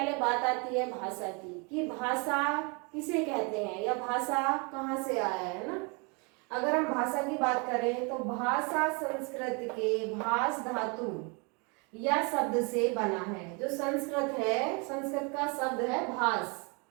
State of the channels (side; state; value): left; quieter; 32.3 dB